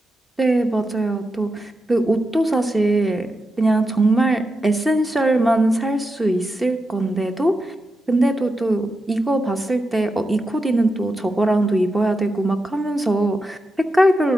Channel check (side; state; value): both; normal; correlation 0.88